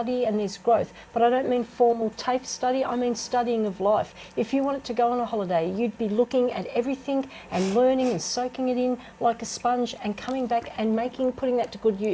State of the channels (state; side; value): identical; both; correlation 1.00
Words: and there's growth. But I don't mean formal TAFE study. I mean studying of life. If you wanted to go on a holiday, you'd be looking at everything and learning and soaking it in like a sponge and coming back and putting that to good